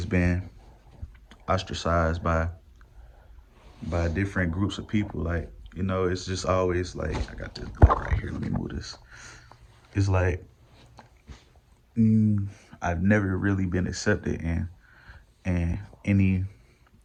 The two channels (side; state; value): both; identical; correlation 1.00